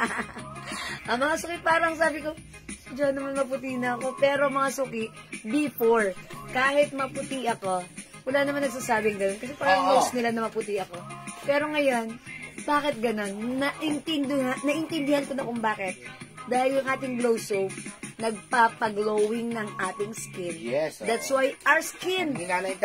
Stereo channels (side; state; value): both; identical; correlation 1.00